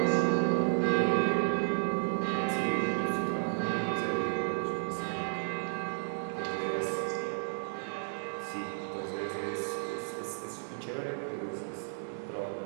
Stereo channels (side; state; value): left; silent; digital silence